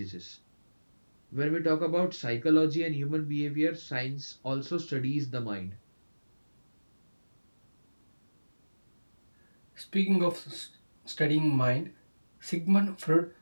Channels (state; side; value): inverted; both; correlation -1.00